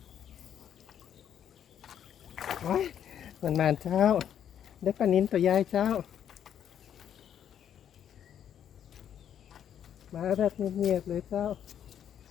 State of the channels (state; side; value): quieter; right; 9.4 dB